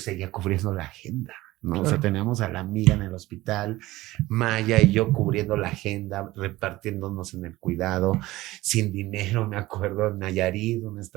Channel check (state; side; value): quieter; left; 17.9 dB